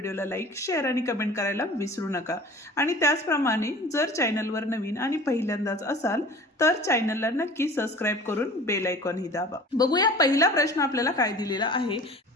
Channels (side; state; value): both; normal; correlation 0.43